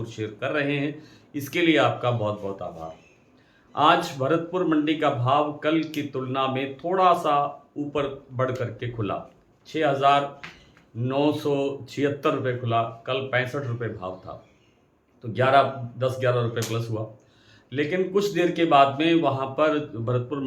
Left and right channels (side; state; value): both; identical; correlation 1.00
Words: शेयर कर रहे हैं, इसके लिए आपका बहुत बहुत आभार। आज भरतपुर मंडी का भाव कल की तुलना में थोड़ा सा ऊपर बढ़ करके खुला। 6,976 रुपये खुला। कल 65 रुपये भाव था, तो 10-11 रुपये प्लस हुआ। लेकिन कुछ देर के बाद में वहाँ पर भरतपुर